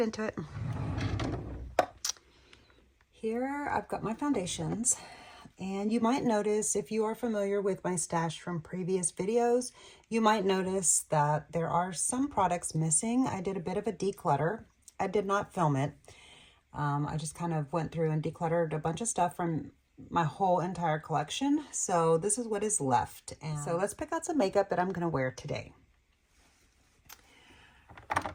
into it. Here I've got my foundations, and you might notice, if you are familiar with my stash from previous videos, you might notice that there are some products missing. I did a bit of a declutter. I did not film it. I just kind of went through and decluttered a bunch of stuff from my whole entire collection. So this is what is left. And so let's pick out some makeup that I'm going to wear today.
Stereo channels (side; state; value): both; identical; correlation 1.00